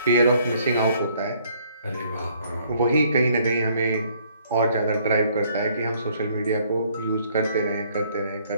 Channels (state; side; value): inverted; both; correlation -0.64